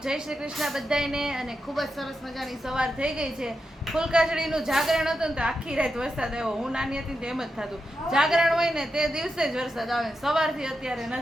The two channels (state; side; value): normal; both; correlation 0.87